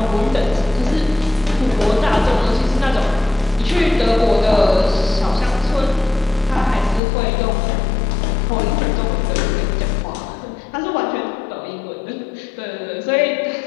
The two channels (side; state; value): right; drops out; at 7.0 s